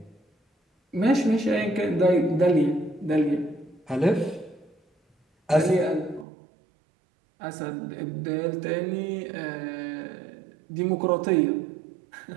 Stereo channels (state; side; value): drops out; left; at 6.2 s